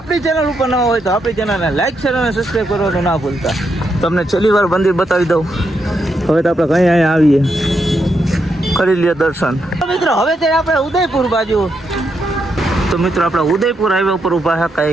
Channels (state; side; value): normal; both; correlation 0.81